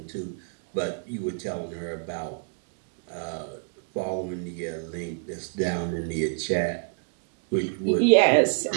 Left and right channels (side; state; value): left; silent; 55 dB below the other